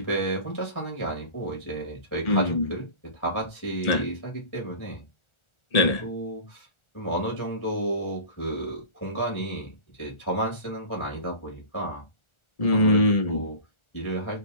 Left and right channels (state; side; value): late; right; 1.4 ms